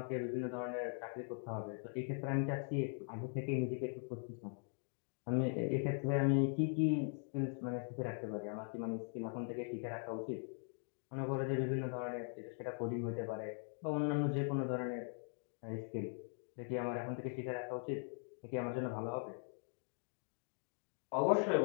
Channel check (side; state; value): right; silent; 50 dB below the other